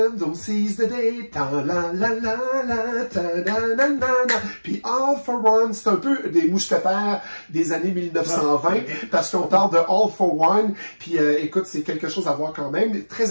seize the day, puis All for One, c'est un peu des mousquetaires des années 1920, parce qu'on parle de All for One, puis écoute, c'est quelque chose à voir quand même,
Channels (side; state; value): both; inverted; correlation -1.00